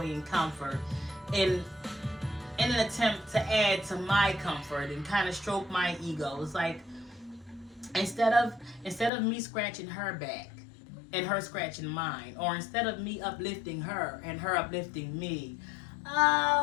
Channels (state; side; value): drops out; right; at 9.1 s